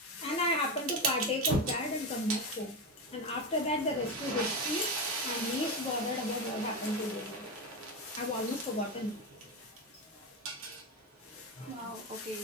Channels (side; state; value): both; normal; correlation 0.16